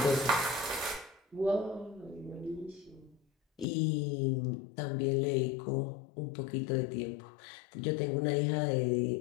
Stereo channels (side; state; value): right; drops out; at 3.7 s